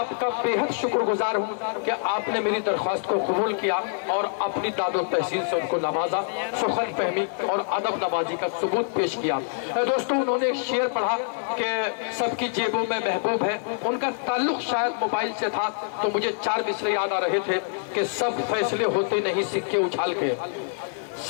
बेहद शुक्रगुजार हूँ कि आपने मेरी दरख्वास्त को कबूल किया और अपनी दादो तहसीन से उनको नवाजा, सुखद फहमी और अदब नवाजी का सबूत पेश किया। दोस्तों, उन्होंने एक शेर पढ़ा कि सबकी जेबों में महबूब है। उनका ताल्लुक शायद मोबाइल से था, तो मुझे 4 मिसरे याद आ रहे थे कि सब फैसले होते नहीं सिक्के उछाल के,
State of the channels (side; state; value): right; silent; 61 dB below the other